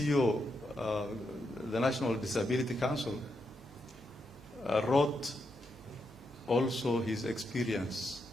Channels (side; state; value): both; normal; correlation 0.83